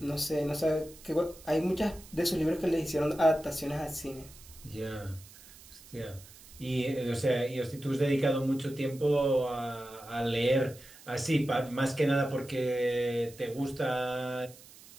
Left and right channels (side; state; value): right; noise; hiss, 21 dB below the sound